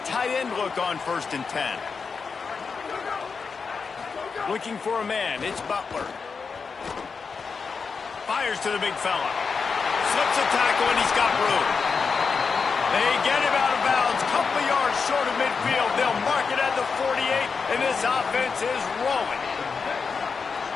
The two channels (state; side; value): quieter; right; 5.3 dB